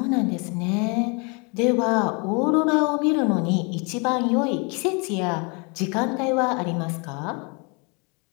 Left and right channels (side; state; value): right; quieter; 32.5 dB